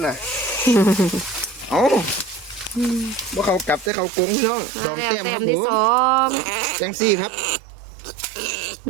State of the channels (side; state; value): left; drops out; at 3.9 s